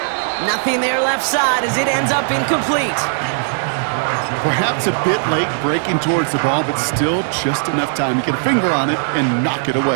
Nothing there left side as it ends up incomplete. Perhaps a bit late breaking towards the ball, but still just enough time to get a finger on it and knock it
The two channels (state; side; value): silent; left; digital silence